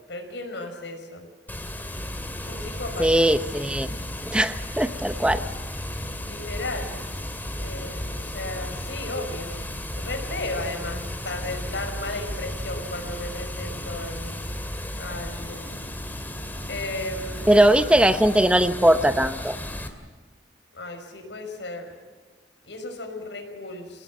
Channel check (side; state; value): both; normal; correlation 0.76